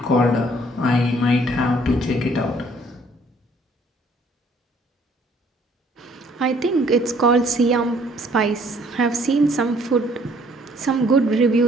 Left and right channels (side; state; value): both; normal; correlation 0.61